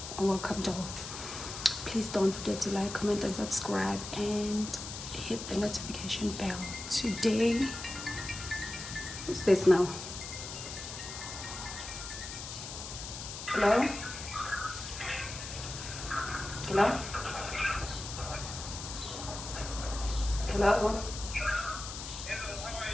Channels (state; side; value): noise; left; hiss, 8 dB below the sound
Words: welcome dolls. Please don't forget to like, comment and subscribe and hit the notification bell. Today, who's this now? Hello? Hello? Hello?